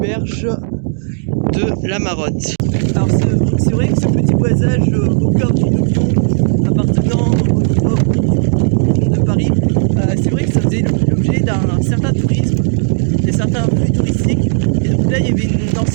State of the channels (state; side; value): silent; left; digital silence